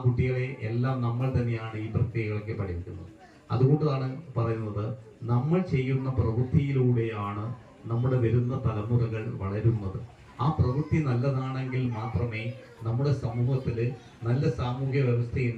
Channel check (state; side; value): identical; both; correlation 1.00